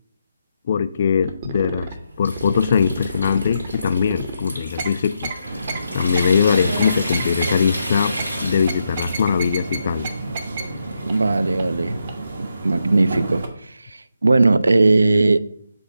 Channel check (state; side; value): inverted; both; correlation -0.82